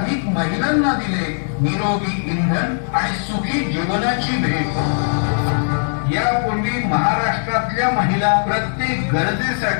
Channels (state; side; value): silent; right; digital silence